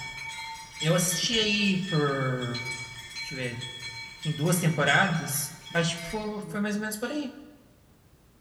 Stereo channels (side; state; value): both; identical; correlation 1.00